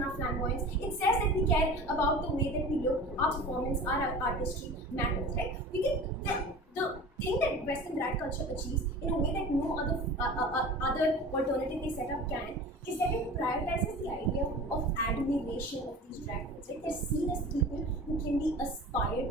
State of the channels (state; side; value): normal; both; correlation 0.37